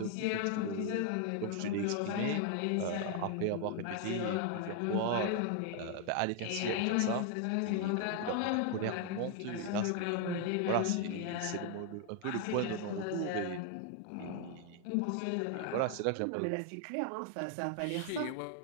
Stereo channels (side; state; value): both; different; correlation 0.00